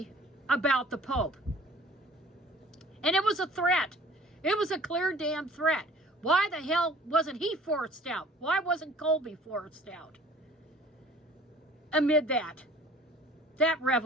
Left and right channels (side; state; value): both; normal; correlation 0.50